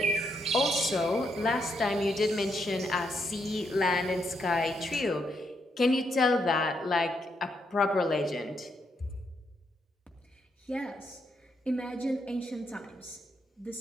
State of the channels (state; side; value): normal; both; correlation 0.78